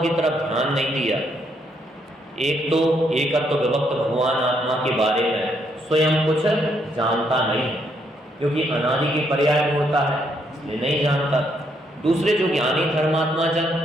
तरफ ध्यान नहीं दिया। एक तो एकत्व विभक्त भगवान आत्मा के बारे में स्वयं कुछ जानता नहीं, क्योंकि अनादि के पर्याय में होता है इसलिए नहीं जानता। दूसरे जो ज्ञानी धर्मात्मा जन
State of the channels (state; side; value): normal; both; correlation 0.74